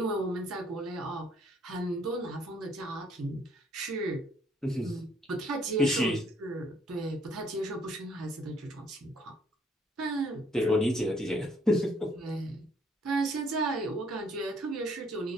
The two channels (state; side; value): normal; both; correlation 0.64